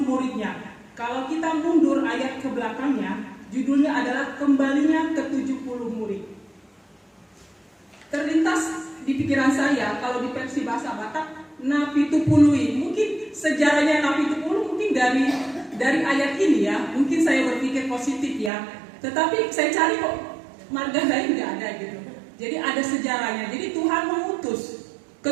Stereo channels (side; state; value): left; drops out; at 18.5 s